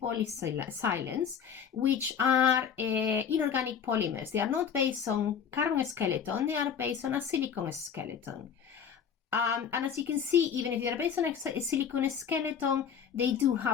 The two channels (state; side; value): quieter; right; 7.5 dB